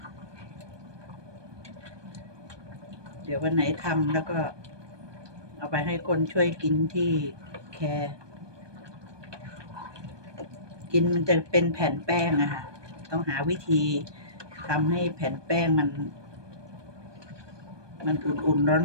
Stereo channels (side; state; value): left; late; 1.2 ms